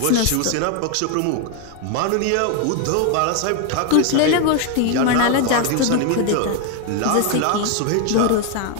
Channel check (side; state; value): both; different; correlation 0.01